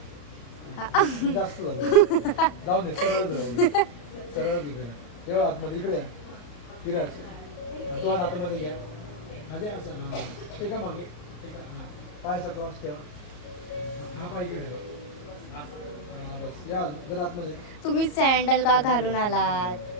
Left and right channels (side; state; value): right; late; 34 ms